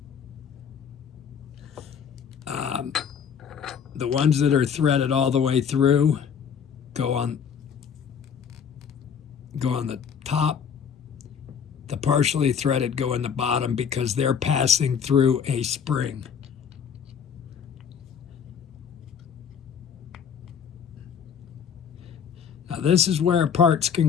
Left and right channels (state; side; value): quieter; right; 7.3 dB